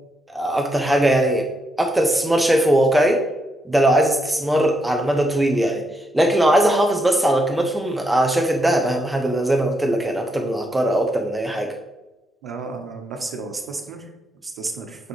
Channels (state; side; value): normal; both; correlation 0.79